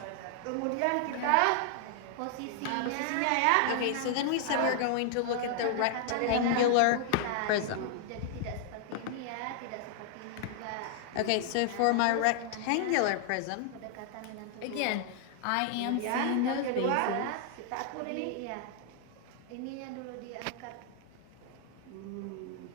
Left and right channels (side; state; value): both; different; correlation 0.00